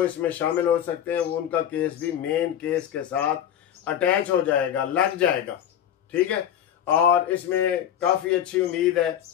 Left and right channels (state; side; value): quieter; right; 10.2 dB